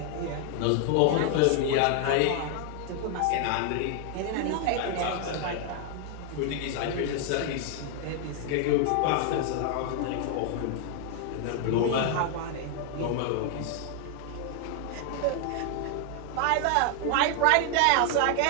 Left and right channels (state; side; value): different; both; correlation 0.00